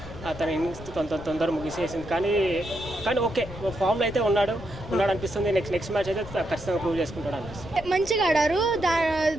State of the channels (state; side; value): noise; left; rumble, 14 dB below the sound